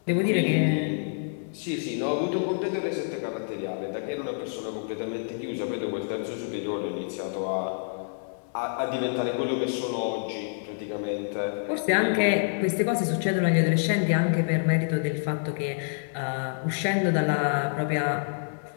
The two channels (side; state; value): right; silent; digital silence